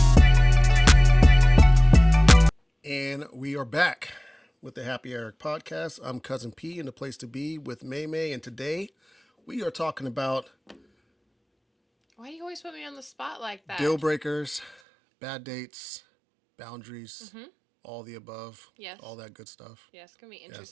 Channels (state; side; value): drops out; left; at 14.8 s